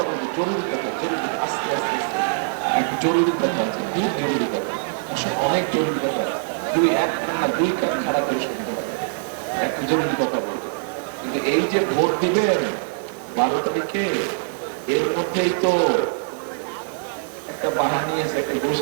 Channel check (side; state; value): left; silent; digital silence